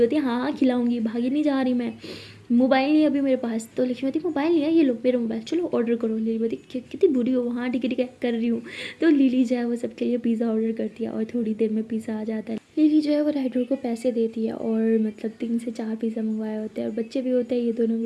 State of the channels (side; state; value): both; identical; correlation 1.00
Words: है हाँ हाँ खिलाऊंगी, भागी नहीं जा रही मैं, मोबाइल नहीं है अभी मेरे पास। तो लक्ष्मीवती मोबाइल नहीं है, ये लो मेरा मोबाइल, चलो ऑर्डर करो। लिलीवती कितनी बुरी हो, हाँ ठीक है कर रही हूँ। तो लिली जो है वो सबके लिए पिज़्ज़ा ऑर्डर करती है और थोड़ी देर में पिज़्ज़ा आ जाता है। लिली जो है वो राइडर को पैसे देती है और मतलब 3 से 4 पिज़्ज़ा मंगवाए होते हैं और बच्चे भी होते हैं, ये दोनों भी